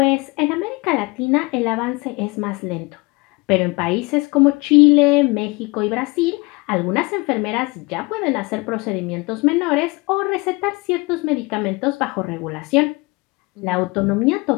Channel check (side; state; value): right; quieter; 25.7 dB